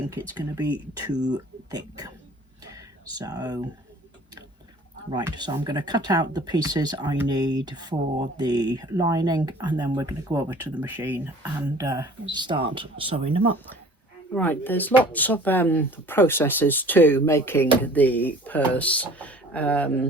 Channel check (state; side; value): normal; both; correlation 0.48